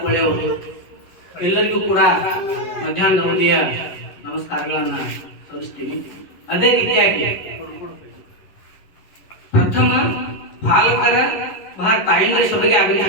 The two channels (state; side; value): late; right; 11 ms